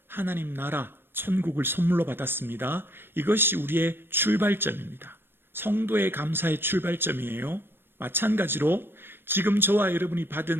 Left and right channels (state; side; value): late; left; 0.10 ms